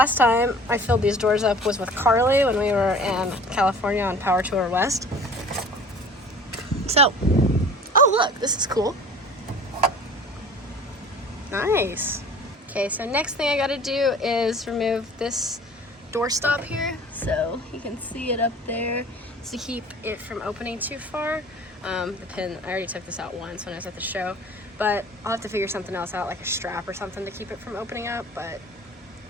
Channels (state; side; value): normal; both; correlation 0.45